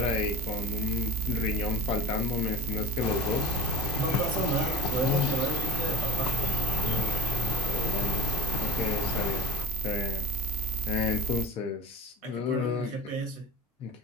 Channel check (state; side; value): normal; both; correlation 0.45